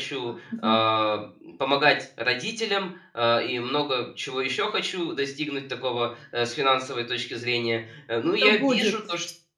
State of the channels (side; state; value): both; identical; correlation 1.00